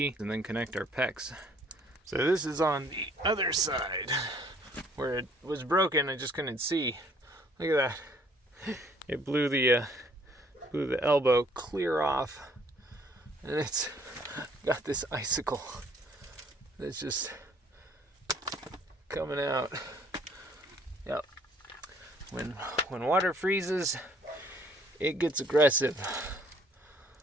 and then connect our PEX. So this is on the other side where it was broken. I just couldn't see. Look at that. It blew the elbow clear off, and it's got this icicle that's just coming out. Yep. When water freezes, it gets aggressive.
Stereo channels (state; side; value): normal; both; correlation 0.61